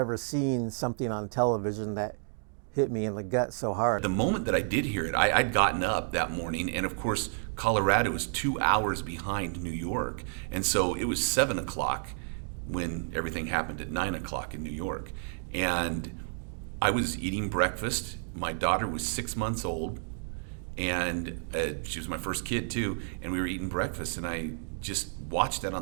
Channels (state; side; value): silent; left; digital silence